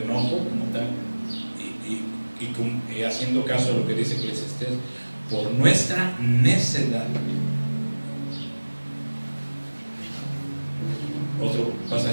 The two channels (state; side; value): inverted; both; correlation -1.00